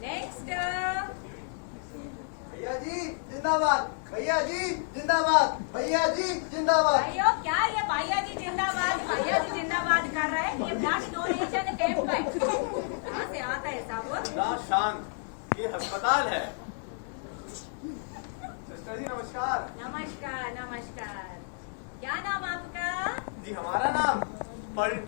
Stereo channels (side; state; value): right; silent; digital silence